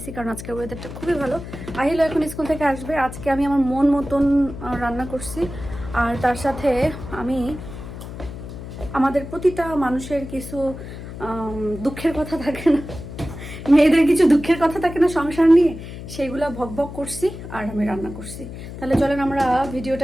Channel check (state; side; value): noise; left; hum, 11 dB below the sound